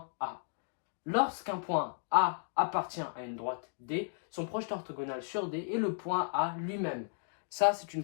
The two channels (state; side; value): silent; right; digital silence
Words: A. Lorsqu'un point A appartient à une droite D, son projeté orthogonal sur D est le point A lui-même. Ça, c'est une